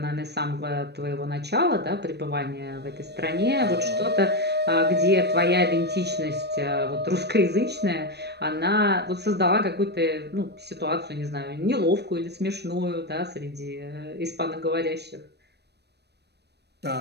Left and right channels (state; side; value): late; left; 0.48 ms